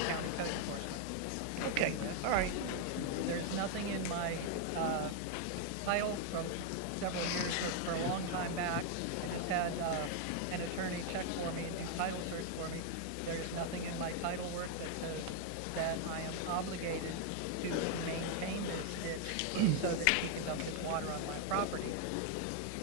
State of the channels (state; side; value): different; both; correlation 0.00